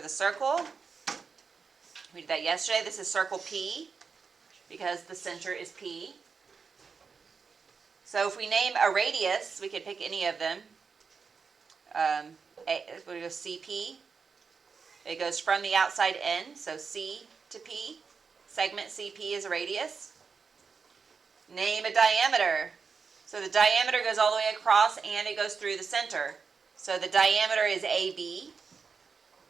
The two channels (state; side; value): quieter; left; 5.4 dB